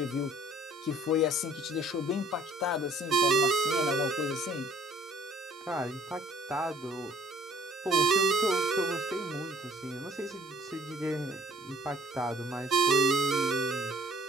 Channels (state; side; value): normal; both; correlation 0.58